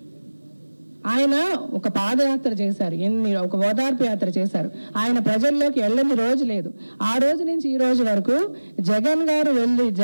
ఆయన ఒక పాదయాత్ర చేశారు, ఒక ఓదార్పు యాత్ర చేశారు. ఆయన ప్రజల్లోకి వెళ్ళని రోజు లేదు. ఆ రోజు నుంచి ఈ రోజు వరకు జగన్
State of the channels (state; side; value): inverted; both; correlation -1.00